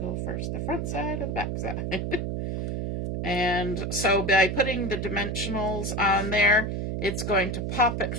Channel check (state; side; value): noise; right; hum, 2 dB below the sound